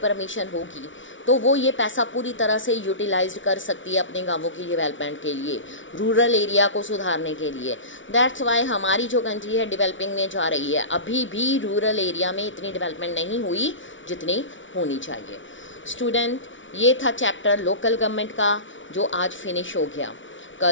होगी तो वो ये पैसा पूरी तरह से यूटिलाइज कर सकती है अपने गांवों की डेवलपमेंट के लिए, रूरल एरिया को सुधारने के लिए. दैट्स वाई हमारी जो कंट्री है डेवलपिंग में जा रही है. अभी भी रूरल एरिया में इतनी डेवलपमेंट नहीं हुई जितनी होनी चाहिए. स्टूडेंट, ये था चैप्टर लोकल गवर्नमेंट का जो आज फिनिश हो गया.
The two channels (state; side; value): late; right; 0.56 ms